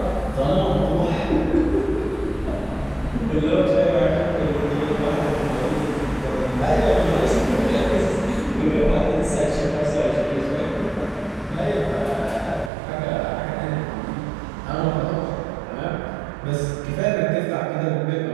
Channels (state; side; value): drops out; left; at 12.7 s